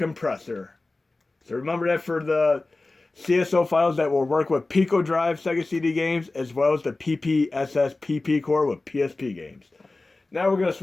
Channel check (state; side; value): quieter; right; 3.2 dB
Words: So remember that for the CSO files that will work with Pico Drive Sega CD games as well as the PPSS PP core with PSP games. Now we're going to